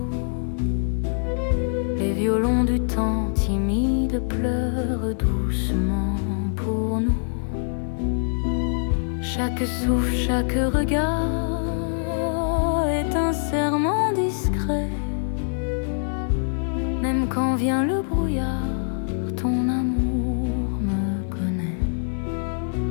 Les violons du temps timide pleurent doucement pour nous. Chaque souffle, chaque regard est un serment discret. Même quand vient le brouillard, ton amour me connaît.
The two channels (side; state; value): right; silent; digital silence